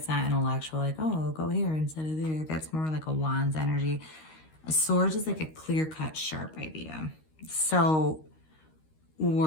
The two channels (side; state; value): right; late; 13 ms